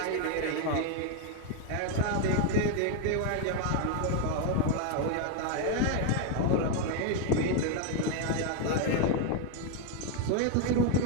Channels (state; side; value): different; both; correlation 0.01